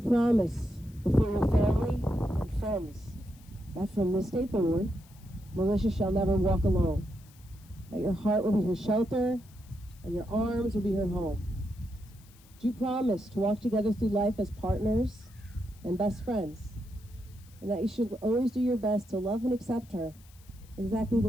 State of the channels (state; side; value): noise; left; hiss, 27 dB below the sound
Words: before your family and friends that from this day forward, Melissa shall never walk alone, that your heart will be her shelter and your arms will be her home? Do you promise to walk together through life as partners and best friends, and that you should always do your best to love and accept her exactly the